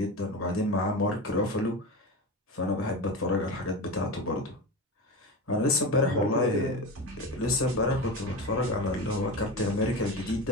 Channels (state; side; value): normal; both; correlation 0.25